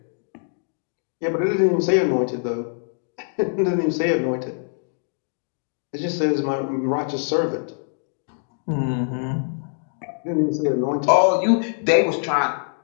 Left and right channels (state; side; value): silent; right; digital silence